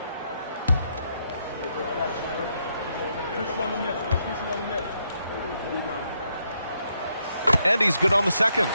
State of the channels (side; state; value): both; inverted; correlation -0.77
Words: And he's good on the second.